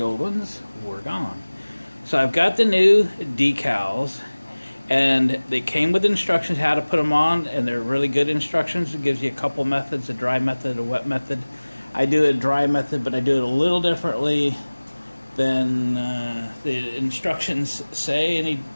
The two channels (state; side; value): inverted; both; correlation -1.00